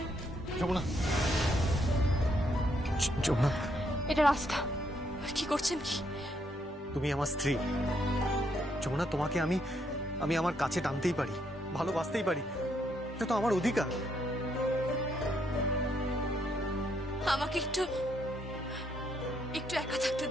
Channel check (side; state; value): both; normal; correlation 0.74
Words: যমুনা, যমুনা, এটা রাস্তা। কি করছেন কি? তুমি আমার স্ত্রী যমুনা, তোমাকে আমি আমার কাছে টানতেই পারি, ভালোবাসতেই পারি। এটা তো আমার অধিকার। আমাকে একটু একা থাকতে